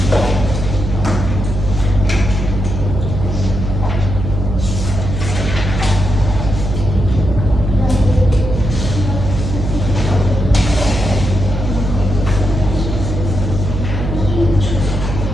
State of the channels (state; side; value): noise; right; hum, 4 dB below the sound